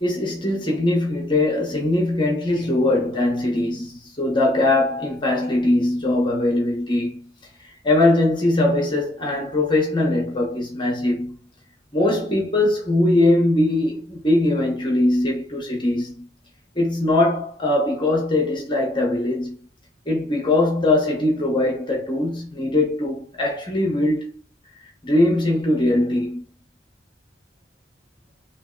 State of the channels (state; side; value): normal; both; correlation 0.67